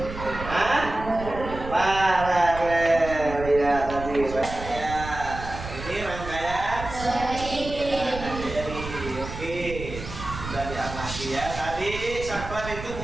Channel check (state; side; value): noise; right; rumble, 10 dB below the sound